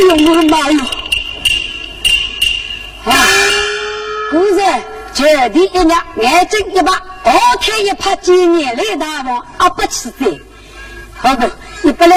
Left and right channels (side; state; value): both; identical; correlation 1.00